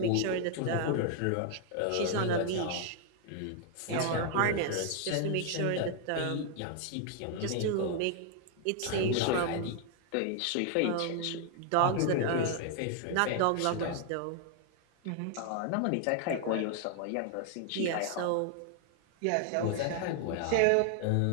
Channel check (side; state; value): both; different; correlation 0.00